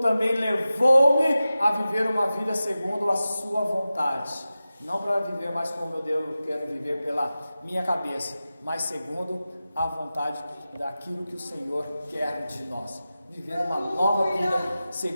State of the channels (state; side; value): inverted; both; correlation -0.94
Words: levou-me a viver uma vida segundo a sua vontade. Não para viver mais como eu quero viver pela minha cabeça, mas segundo a vontade daquilo que o Senhor quer de nós. Viver uma nova vida